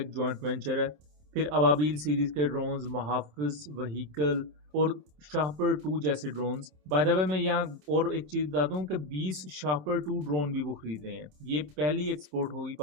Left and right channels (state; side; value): late; left; 27 ms